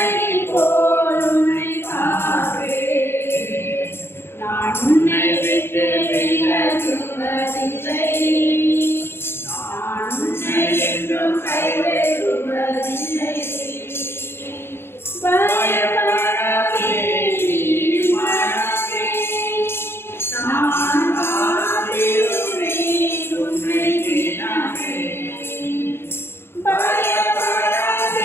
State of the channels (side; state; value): right; late; 0.11 ms